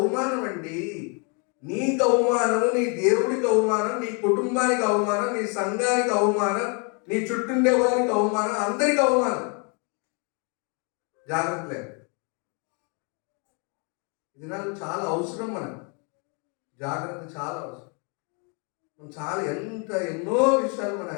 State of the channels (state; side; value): quieter; right; 35.7 dB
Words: అండి. నీకు అవమానము, నీ దేవుడికి అవమానం, నీ కుటుంబానికి అవమానం, నీ సంఘానికి అవమానం, నీ చుట్టుండే వారికి అవమానం, అందరికి అవమానం. జాగ్రత్త లేదు. ఇది నాకు చాలా అవసరం. మనకు జాగ్రత్త చాలా అవసరం. ఎన్నో విషయాలు మనం